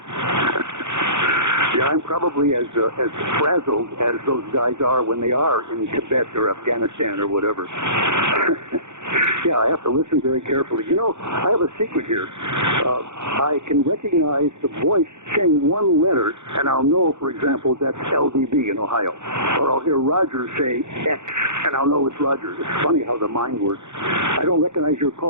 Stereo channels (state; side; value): late; left; 0.83 ms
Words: Yeah, I'm probably as frazzled as those guys are when they are in Tibet or Afghanistan or whatever. Yeah, I have to listen very carefully. You know, I have a secret here. I can recognize the voice saying one letter, and I'll know, for example, that's LDB in Ohio. Or I'll hear Roger say X, and I'll know it's Roger. It's funny how the mind works. I don't recognize your